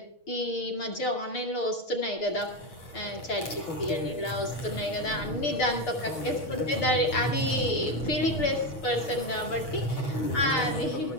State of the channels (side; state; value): right; late; 6.3 ms